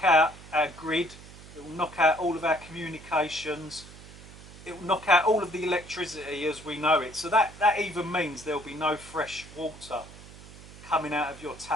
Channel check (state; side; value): noise; right; hum, 18 dB below the sound